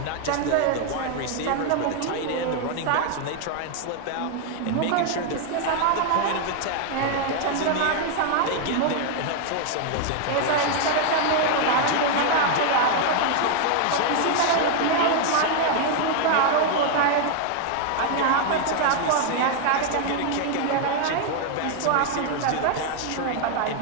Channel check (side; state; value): both; different; correlation 0.00